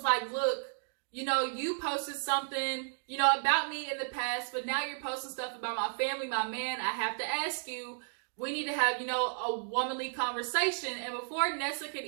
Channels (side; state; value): left; silent; digital silence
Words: like, "Look, you posted something, about me in the past, but now you're posting stuff about my family, my man. I have to ask you, we need to have, a womanly conversation." And before Nessa could